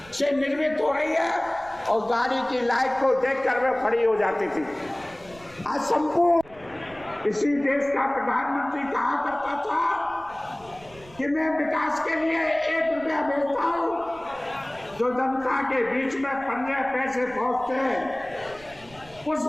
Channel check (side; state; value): right; noise; rumble, 23 dB below the sound